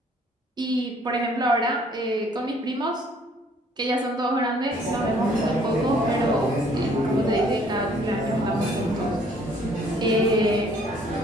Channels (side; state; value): both; normal; correlation 0.60